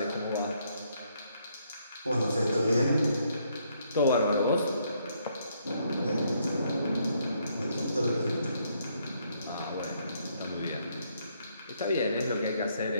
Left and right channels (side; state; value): both; inverted; correlation -0.72